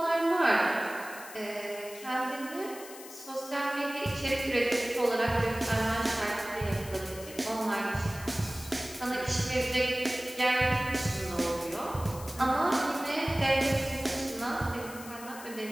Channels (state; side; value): noise; left; hiss, 15 dB below the sound